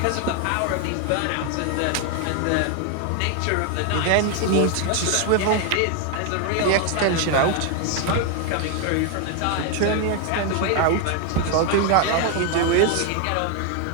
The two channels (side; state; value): both; different; correlation 0.01